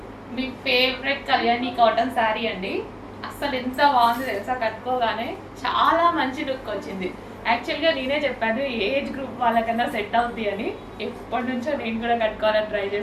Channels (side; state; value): both; identical; correlation 1.00